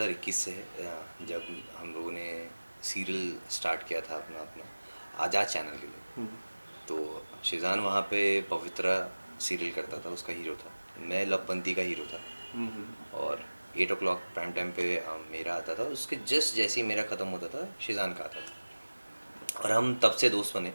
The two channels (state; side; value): inverted; both; correlation -1.00